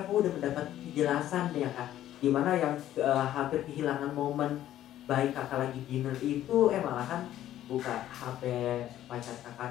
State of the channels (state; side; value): quieter; right; 12.6 dB